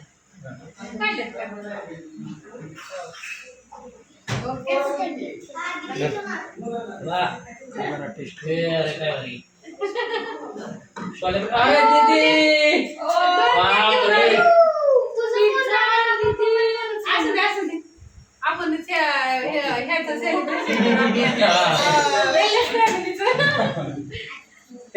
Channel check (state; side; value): identical; both; correlation 1.00